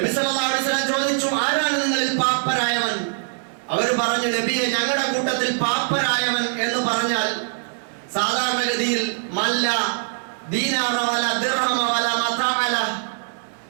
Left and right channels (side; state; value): left; silent; digital silence